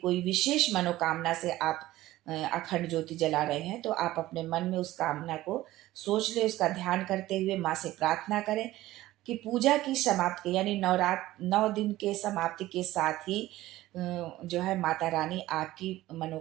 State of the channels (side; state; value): left; quieter; 16.2 dB